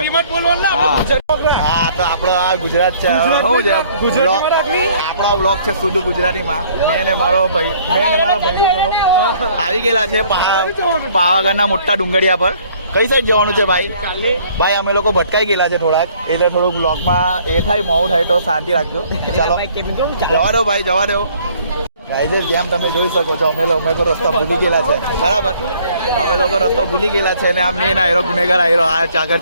હા તો આપણો આ ગુજરાત છે. શું છે આપણો બ્લોગ છે શુદ્ધ ગુજરાતીમાં. મેં ને મારા ભાઈ આવી ગયેલા છે પાવાગઢના મોટા ડુંગળિયા પર. કઈ સાઈડ જવાનું છે ભાઈ અમે લોકો ભટકાઈ ગયેલા છે થોડાક એટલે થોડુંક બ્લોગમાં એ થાય મોડું થાય તો શાંતિ રાખજો. ચાલો જવા દો ભાઈ જવા દો. ગાઈઝ જેમ તમે જોઈ શકો છો અમે લોકો રસ્તા ભૂલી ગયેલા છે. બરાબર અમે લોકો રસ્તો ભૂલી ગયેલા છે ને આ મેન આયરો ગુનેગાર આયરો આ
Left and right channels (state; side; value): inverted; both; correlation -0.59